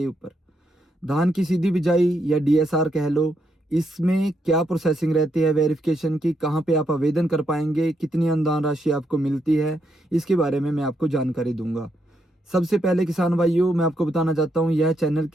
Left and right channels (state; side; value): normal; both; correlation 0.79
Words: ऊपर। धान की सीधी बिजाई या डीएसआर कह लो, इसमें क्या प्रोसेसिंग रहती है वेरिफिकेशन की, कहां पे आप आवेदन कर पाएंगे, कितनी अनुदान राशि आपको मिलती है, इसके बारे में मैं आपको जानकारी दूंगा। सबसे पहले किसान भाइयों, मैं आपको बताना चाहता हूं यह चैनल